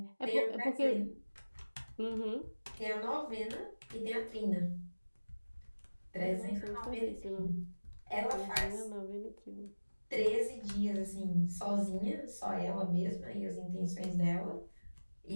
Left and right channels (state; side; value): inverted; both; correlation -1.00